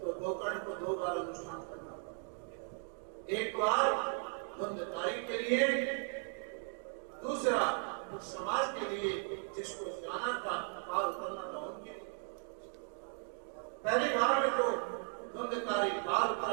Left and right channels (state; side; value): quieter; left; 38.5 dB